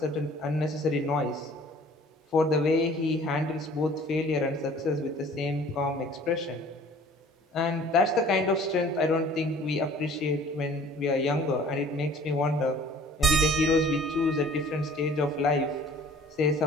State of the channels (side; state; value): both; normal; correlation 0.50